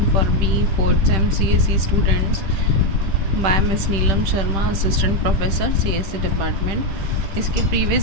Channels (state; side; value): late; left; 10 ms